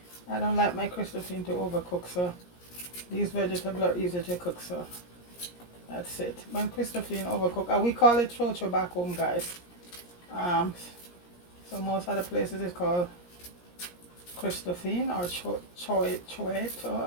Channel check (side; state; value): right; late; 17 ms